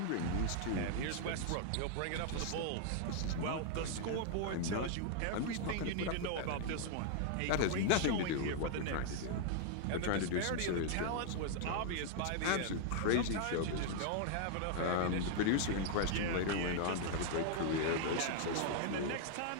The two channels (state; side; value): different; both; correlation -0.01